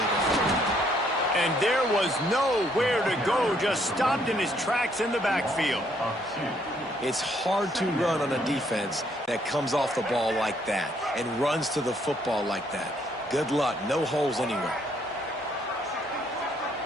different. And there was nowhere to go, just stopped in his tracks in the backfield. It's hard to run on a defense that comes off the ball like that and runs to the football like that. Good luck. No holes anywhere.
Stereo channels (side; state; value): both; normal; correlation 0.69